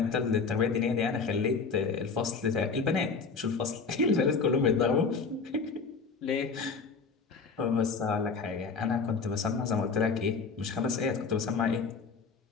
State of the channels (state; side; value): quieter; right; 5.0 dB